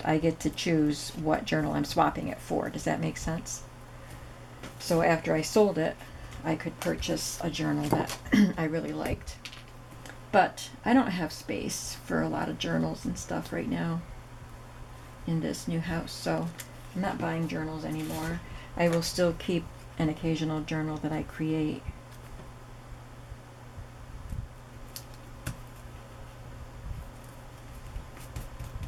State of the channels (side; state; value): both; identical; correlation 1.00